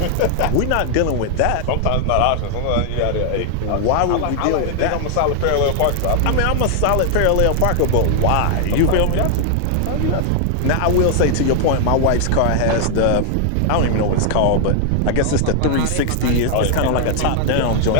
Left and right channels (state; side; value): different; both; correlation 0.00